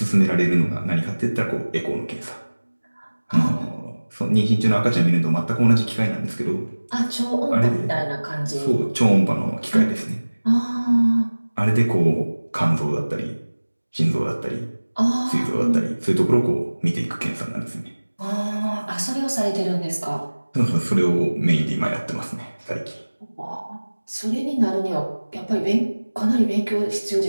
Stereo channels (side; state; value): both; inverted; correlation -1.00